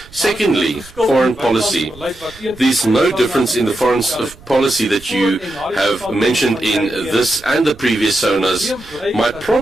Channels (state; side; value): noise; right; rumble, 22 dB below the sound